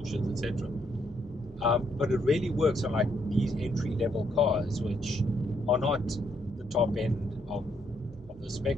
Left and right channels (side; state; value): both; normal; correlation 0.74